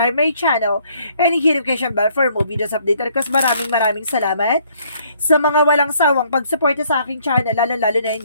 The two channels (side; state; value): both; inverted; correlation -0.64